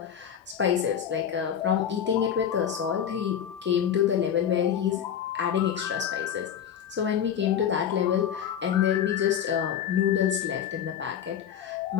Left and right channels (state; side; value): quieter; right; 9.0 dB